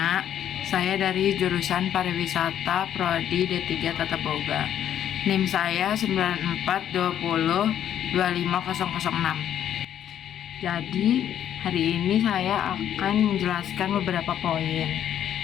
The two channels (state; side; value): quieter; right; 10.3 dB